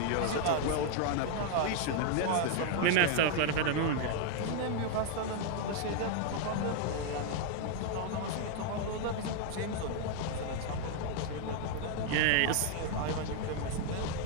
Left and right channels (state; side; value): different; both; correlation 0.00